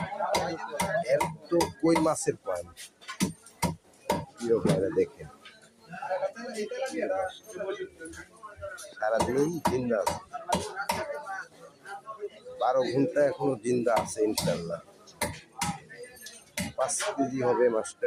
এর তো কই মাছের পয়েন্ট, প্রিয় ভাইরা দেখেন, সারাদিন জিন্দা আছে, 12 ঘন্টা এখনো জিন্দা আছে ইনশাল্লাহ। 5 কেজি হবে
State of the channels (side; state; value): both; identical; correlation 1.00